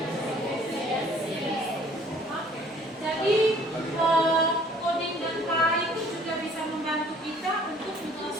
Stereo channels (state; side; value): normal; both; correlation 0.56